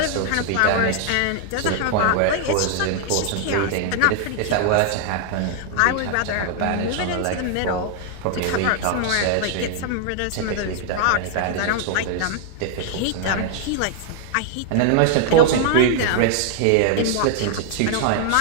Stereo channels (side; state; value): both; different; correlation 0.00